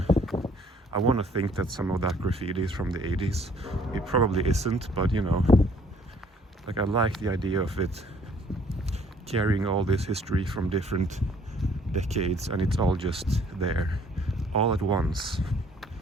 I want to think that some of that graffiti is from the 80s. It probably isn't, but you know, like I like the idea of it carrying all this history from different decades, and it's all just there, all at once.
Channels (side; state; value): both; normal; correlation 0.60